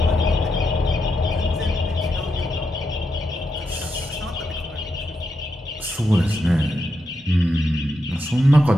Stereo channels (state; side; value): normal; both; correlation 0.84